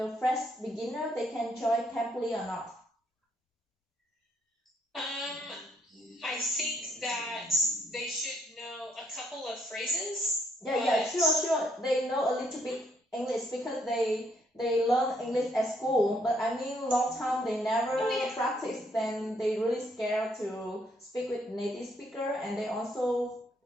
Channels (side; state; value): both; normal; correlation 0.71